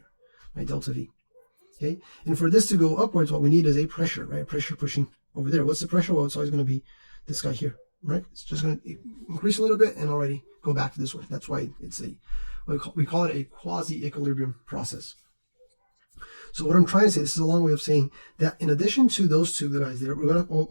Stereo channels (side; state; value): both; inverted; correlation -1.00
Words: my delta V. Okay, and for this to go upwards, what we need is a pressure, right? Pressure pushing over there. What's the pressure? Well, it's always going to be this guy here, right? It's just going to increase a little bit and already go back to this one. That's why it's we call it a quasi-equilibrium process. So what I'm trying to say, this is a long way of saying that in addition to those two guys there, we're